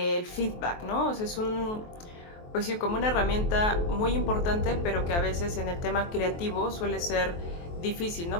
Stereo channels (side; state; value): right; late; 23 ms